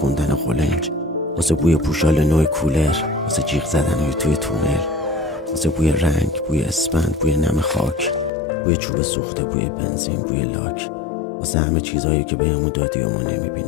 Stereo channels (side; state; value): right; drops out; at 8.3 s